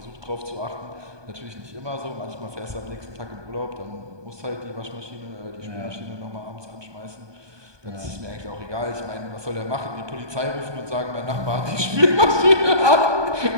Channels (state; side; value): late; left; 1.2 ms